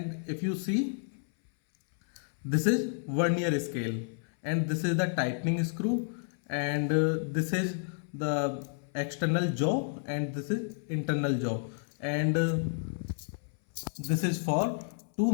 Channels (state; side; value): silent; right; 57 dB below the other